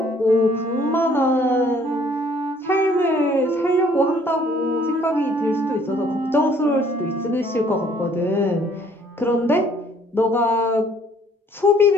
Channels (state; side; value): normal; both; correlation 0.60